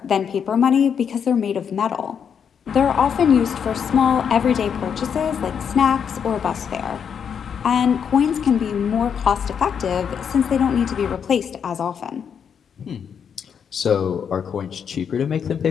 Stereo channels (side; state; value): right; quieter; 7.4 dB